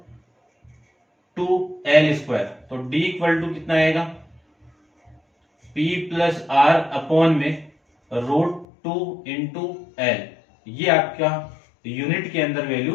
2L स्क्वायर, तो d इक्वल टू कितना आएगा P प्लस R अपॉन में रूट 2 इंटू L, ये आपका यूनिट के अंदर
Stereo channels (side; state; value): right; drops out; at 8.7 s